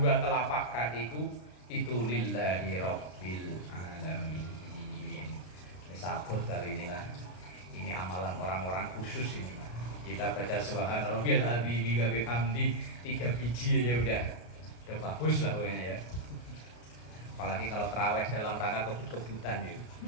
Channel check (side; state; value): right; late; 33 ms